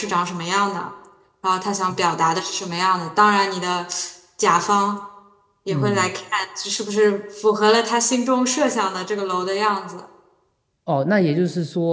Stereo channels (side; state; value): both; identical; correlation 1.00